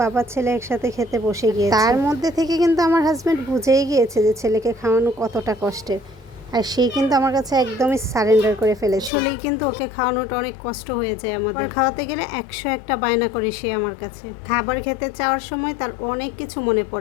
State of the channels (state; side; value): drops out; right; at 9.1 s